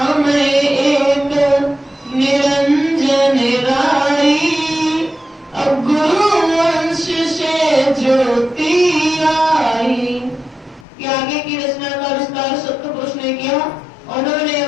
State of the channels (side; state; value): right; drops out; at 10.9 s